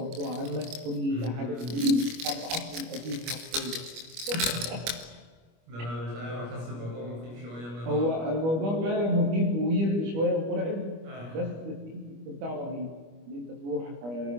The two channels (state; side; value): late; left; 25 ms